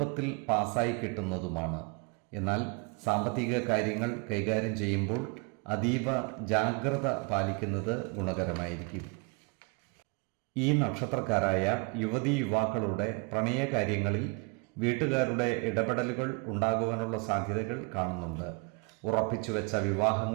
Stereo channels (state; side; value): quieter; left; 32.6 dB